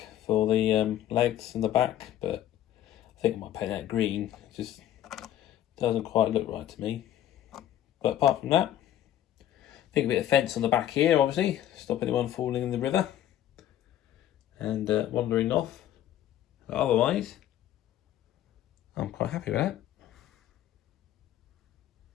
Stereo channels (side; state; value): right; quieter; 11.9 dB